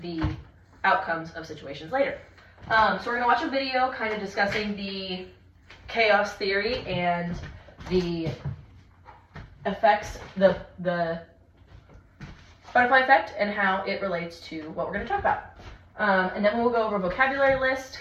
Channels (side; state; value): both; identical; correlation 1.00